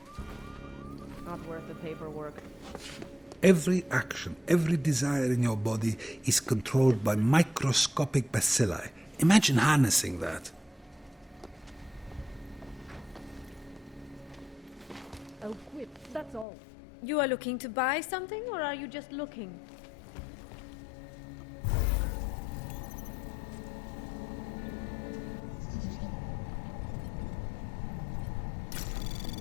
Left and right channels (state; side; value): drops out; right; at 16.4 s